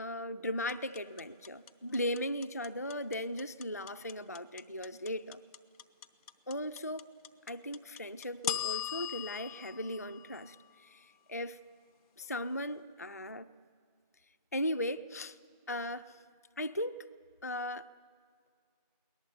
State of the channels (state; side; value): inverted; both; correlation -0.41